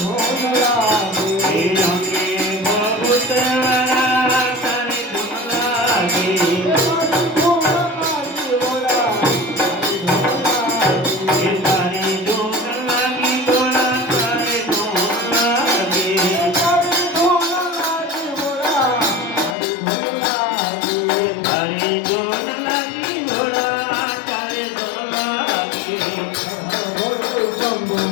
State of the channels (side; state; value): right; drops out; at 19.6 s